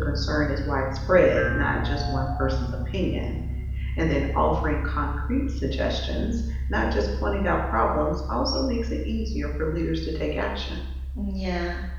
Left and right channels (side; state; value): both; identical; correlation 1.00